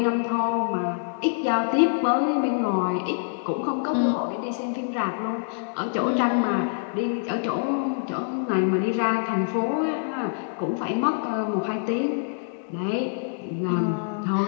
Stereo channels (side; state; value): right; silent; digital silence